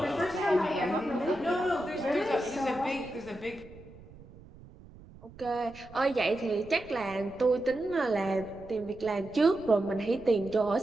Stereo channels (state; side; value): noise; right; rumble, 20 dB below the sound